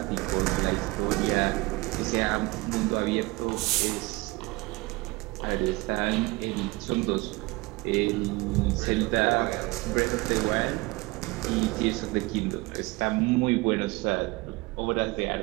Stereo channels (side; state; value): left; quieter; 23.1 dB